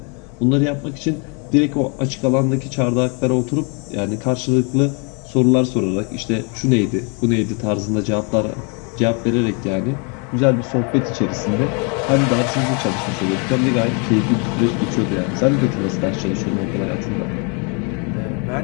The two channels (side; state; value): right; quieter; 35.3 dB